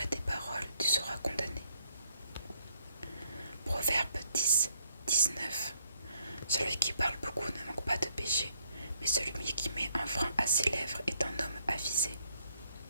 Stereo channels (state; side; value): inverted; both; correlation -0.71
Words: tes paroles, tu seras condamné. Proverbe 10, 19. Celui qui parle beaucoup ne manque pas de péché, mais celui qui met un frein à ses lèvres est un homme avisé.